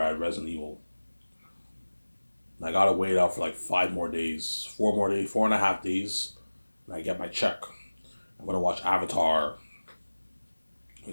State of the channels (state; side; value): inverted; both; correlation -1.00